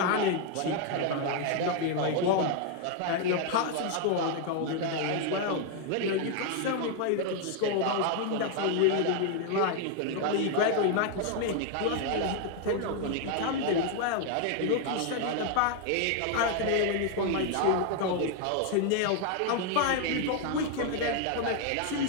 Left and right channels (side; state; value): both; different; correlation 0.00